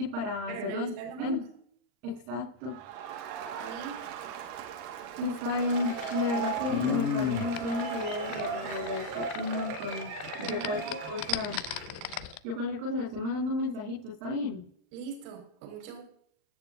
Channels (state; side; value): late; left; 39 ms